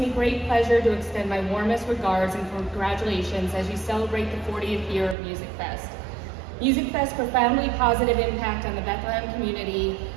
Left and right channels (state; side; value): drops out; left; at 5.2 s